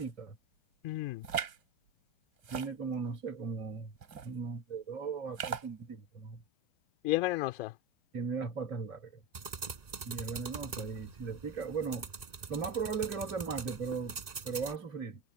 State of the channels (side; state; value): left; late; 1.9 ms